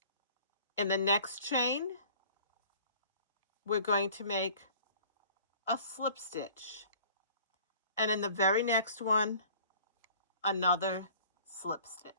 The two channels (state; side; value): inverted; both; correlation -0.50